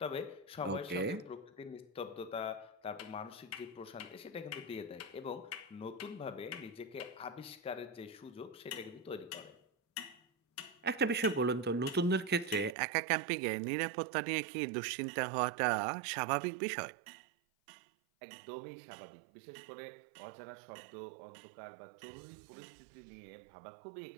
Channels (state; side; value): drops out; left; at 12.8 s